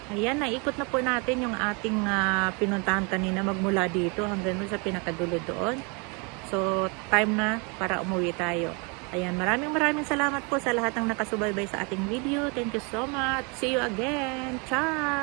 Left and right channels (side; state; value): left; quieter; 32.3 dB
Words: Ayan, naikot na po natin yung ating pinuntahan kanina magmula dito hanggang sa pinakadulo doon. So, time na para umuwi tayo. Ayan, maraming salamat po sa lahat ng nakasubaybay sa ating video. Thank you so much. See you again.